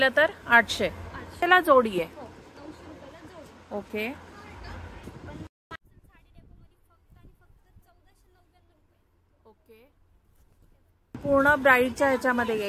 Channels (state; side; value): identical; both; correlation 1.00